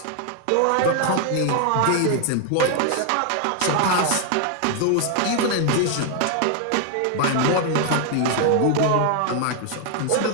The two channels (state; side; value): different; both; correlation 0.00